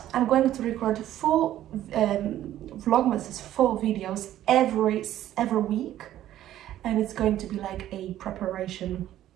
I'm going to record 4 Vlogmases, 4 videos every week, and it's going to be like a preparation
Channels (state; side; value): quieter; left; 12.8 dB